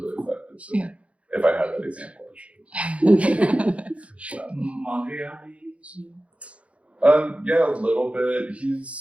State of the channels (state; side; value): late; left; 0.063 ms